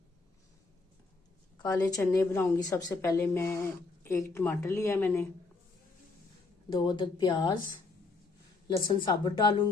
काले चने बनाऊंगी। सबसे पहले मैं एक टमाटर लिया मैंने, 2 अदद प्याज, लहसुन साबुत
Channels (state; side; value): quieter; right; 3.9 dB